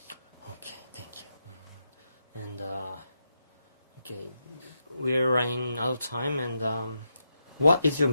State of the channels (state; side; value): inverted; both; correlation -0.84